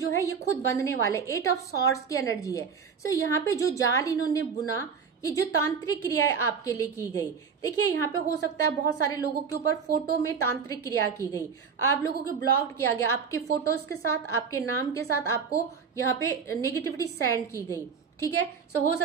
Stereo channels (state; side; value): quieter; left; 6.1 dB